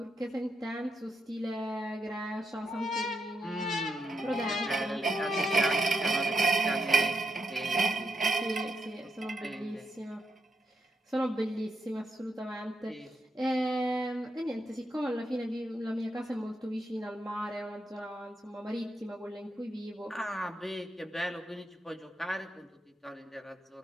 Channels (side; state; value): both; normal; correlation 0.82